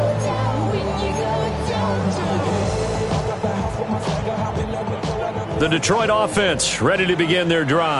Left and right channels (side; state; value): both; identical; correlation 1.00